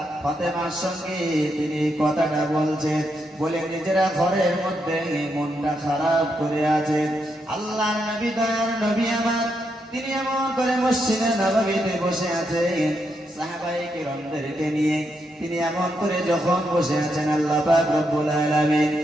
ফাতেমার সঙ্গে তিনি কথাটা বলছেন, বলে নিজেরা ঘরের মধ্যে মনটা খারাপ করে আছেন। আল্লাহর নবী, দয়ার নবী আমার, তিনি এমন করে মসজিদে নববীতে বসে আছেন সাহাবায়ে কিরামদেরকে নিয়ে। তিনি এমন করে যখন বসে আছেন, আল্লাহ পাক রব্বুল আলামিন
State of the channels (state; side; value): normal; both; correlation 0.81